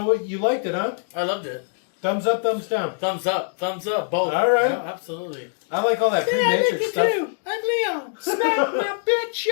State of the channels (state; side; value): silent; right; digital silence